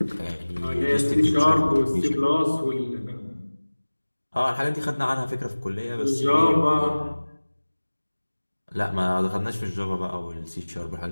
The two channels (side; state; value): both; inverted; correlation -1.00